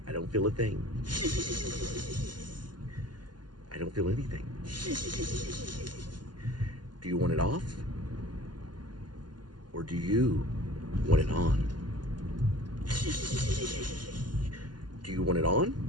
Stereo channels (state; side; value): late; left; 0.70 ms